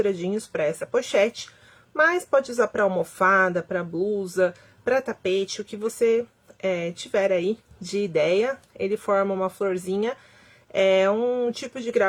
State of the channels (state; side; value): identical; both; correlation 1.00